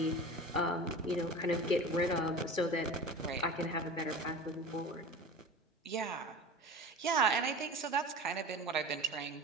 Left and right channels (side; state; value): both; normal; correlation 0.34